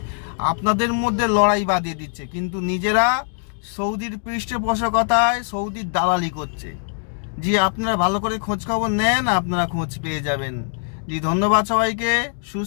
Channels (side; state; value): right; silent; digital silence